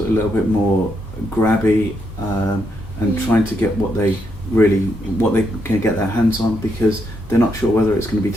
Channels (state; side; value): noise; right; hum, 23 dB below the sound